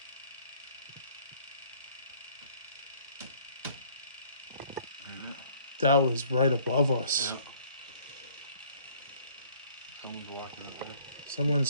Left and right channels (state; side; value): inverted; both; correlation -0.58